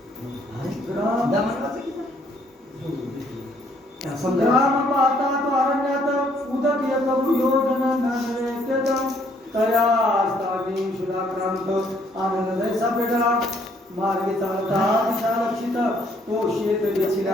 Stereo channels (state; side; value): normal; both; correlation 0.66